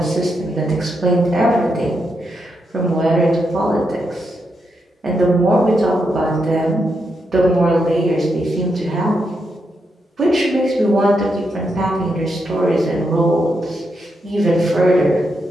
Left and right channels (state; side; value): normal; both; correlation 0.83